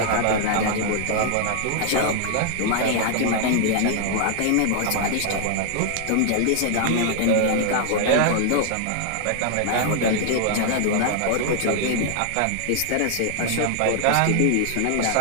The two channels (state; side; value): different; both; correlation -0.01